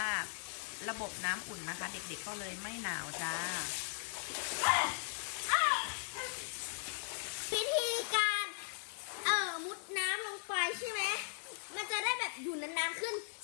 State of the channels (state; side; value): silent; right; digital silence